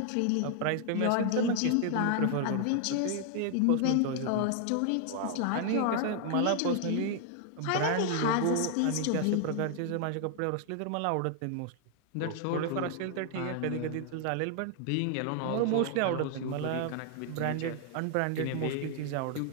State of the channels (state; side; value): different; both; correlation 0.00